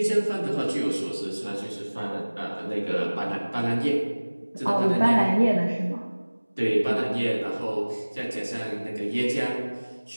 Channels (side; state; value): both; inverted; correlation -1.00